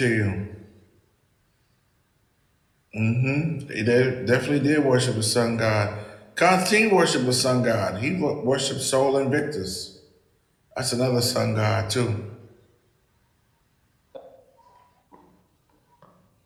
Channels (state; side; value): identical; both; correlation 1.00